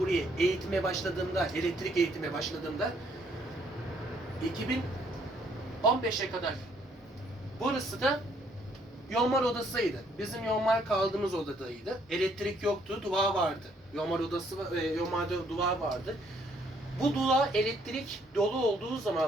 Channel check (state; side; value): normal; both; correlation 0.67